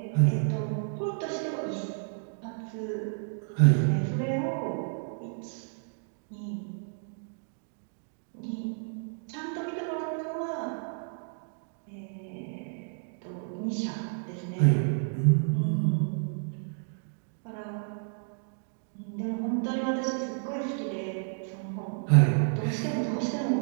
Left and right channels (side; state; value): left; silent; digital silence